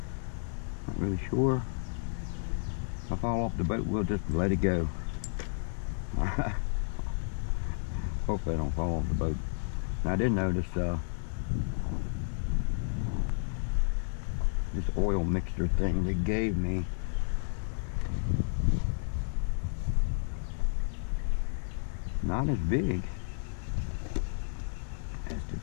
Not really sure. If I fall off the boat, we'll just let it go. Alright. Hopefully I don't fall off the boat. Now I did notice this oil mixture thing they gave me. Not as big as the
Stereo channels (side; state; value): right; silent; 57 dB below the other